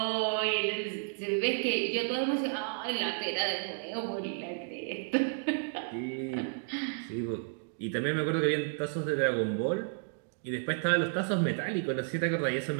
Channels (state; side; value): silent; left; digital silence